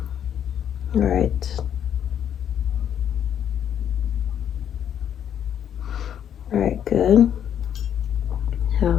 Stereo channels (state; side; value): quieter; right; 9.4 dB